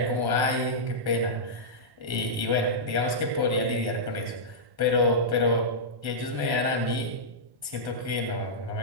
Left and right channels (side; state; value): left; late; 1.1 ms